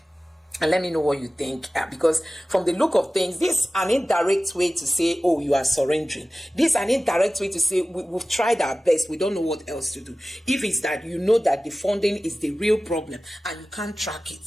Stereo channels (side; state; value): both; normal; correlation 0.96